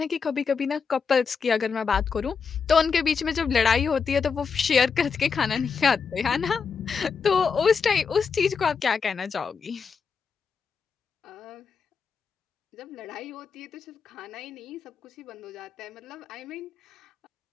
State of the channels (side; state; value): right; quieter; 5.8 dB